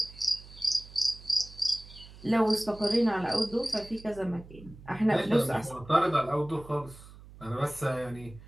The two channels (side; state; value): right; noise; hum, 19 dB below the sound